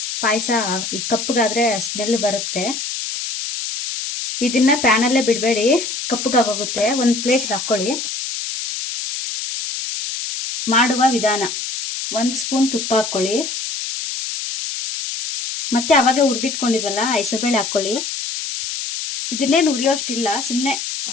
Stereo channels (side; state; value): left; noise; hiss, 5 dB below the sound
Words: ಪಾಯಸ ಕಪ್ಪಗಾದ್ರೆ ಸ್ಮೆಲ್ ಬರುತ್ತೆ. ಇದನ್ನ ಪ್ಯಾನಲ್ಲೇ ಬಿಡಬೇಡಿ, ಕಪ್ಪಗಾಗೋಗುತ್ತೆ. ಒಂದು ಪ್ಲೇಟ್ ಹಾಕೊಳ್ಳಿ. ಮಾಡುವ ವಿಧಾನ: 1 ಸ್ಪೂನ್ ತುಪ್ಪ ಹಾಕೊಳ್ಳಿ. ಮತ್ತೆ ಅವಾಗ ಹುರಿದಿಟ್ಕೊಂಡಿದ್ವಲ್ಲ ಹೆಸರುಬೇಳೆ ಹಾಕೊಳ್ಳಿ. ಇದನ್ನೇನು ಹುರಿಯೋಷ್ಟಿಲ್ಲ, ಸುಮ್ಮನೆ